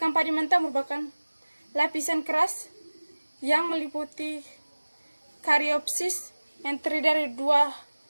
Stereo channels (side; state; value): both; inverted; correlation -1.00